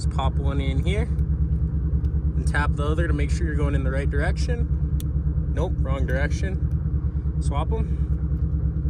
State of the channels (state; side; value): identical; both; correlation 1.00